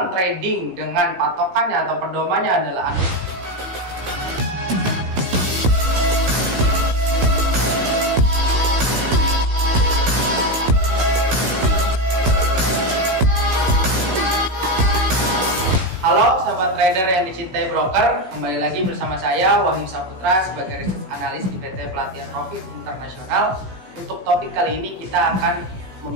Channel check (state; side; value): late; left; 16 ms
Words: trading dengan patokannya atau pedomannya adalah Halo sahabat trader yang dicintai broker, kembali lagi bersama saya Wahyu Saputra sebagai research analis di PT Pelatihan Profit Internasional. Untuk topik kali ini kita akan